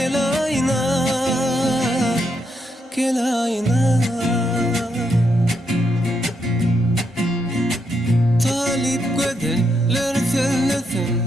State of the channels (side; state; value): both; normal; correlation 0.79